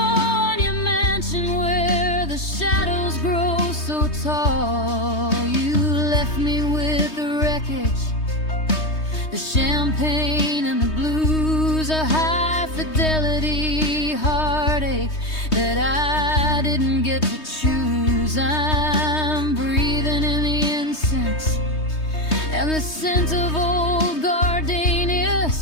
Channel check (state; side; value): late; right; 3.2 ms